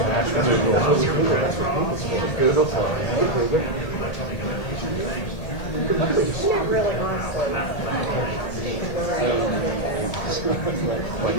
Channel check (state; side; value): late; right; 1.8 ms